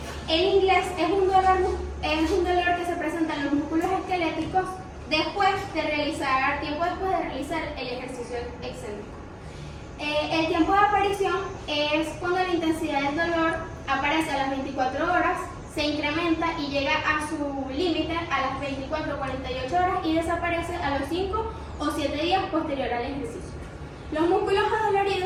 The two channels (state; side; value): identical; both; correlation 1.00